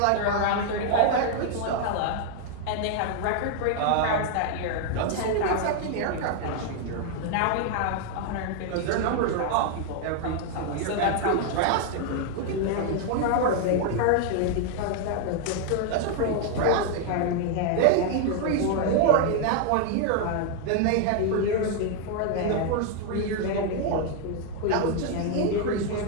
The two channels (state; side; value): different; both; correlation 0.00